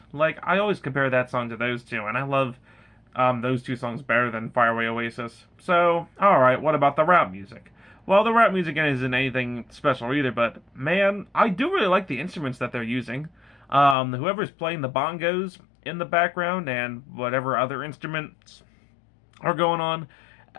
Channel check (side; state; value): right; drops out; at 14.0 s